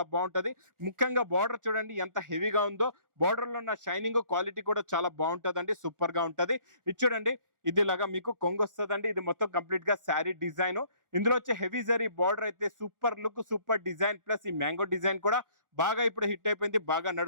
బాగుంటది. ముఖ్యంగా బార్డర్ చూడండి ఎంత హెవీగా ఉందో. బార్డర్ లో ఉన్న షైనింగ్ క్వాలిటీ కూడా చాలా బాగుంటదండి, సూపర్ గా ఉంటది. ఇది చూడండి, ఇది లాగా మీకు కొంగు వస్తుందండి. ఇది మొత్తం కంప్లీట్ గా శారీ డిజైన్. ఇందులో వచ్చే హెవీ జరీ బార్డర్ అయితే super look, super design. Plus ఈ మ్యాంగో డిజైన్ కూడా బాగా ఇప్పుడు హిట్ అయిపోయింది, బాగా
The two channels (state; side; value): late; left; 1.4 ms